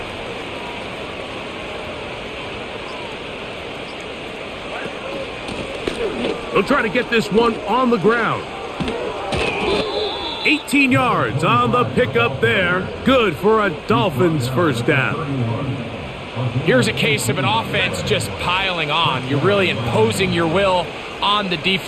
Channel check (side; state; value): both; identical; correlation 1.00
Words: They'll try to get this one on the ground. 18 yards on the pickup there. Good for a Dolphins 1st down. Here's a case of an offense just piling on. You're really imposing your will on the